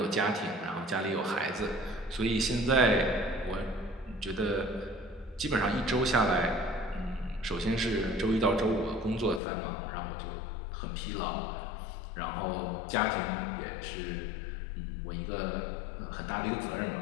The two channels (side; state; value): right; drops out; at 9.4 s